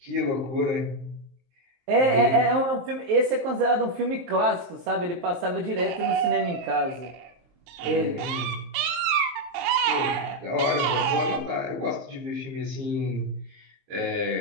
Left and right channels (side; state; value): left; late; 23 ms